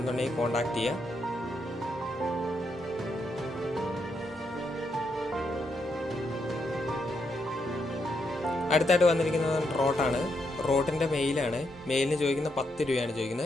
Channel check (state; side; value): normal; both; correlation 0.80